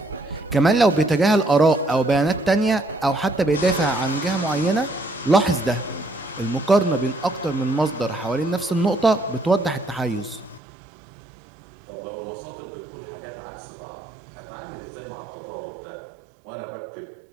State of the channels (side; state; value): left; drops out; at 10.6 s